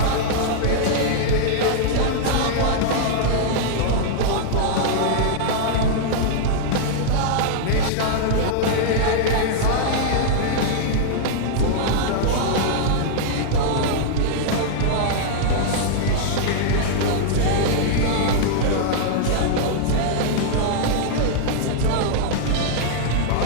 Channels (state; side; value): different; both; correlation -0.02